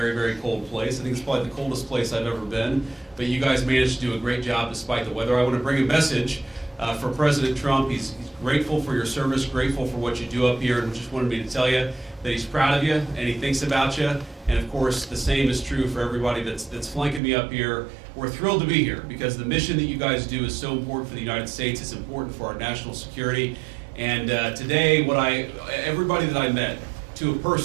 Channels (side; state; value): left; drops out; at 17.2 s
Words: very cold place. I think it's probably the coldest place I've ever been, but you guys managed to do a great job despite the weather. I want to bring a message for President Trump. He's grateful for your service, grateful for what you do up here, and just wanted me to tell you that he's proud of you and he thinks about you. And of course, the same is true for everybody that's flanking me up here. We're thrilled to be here because the mission that you guys do is so important for the United States. It's important for our national security. And today, everybody that I met, to a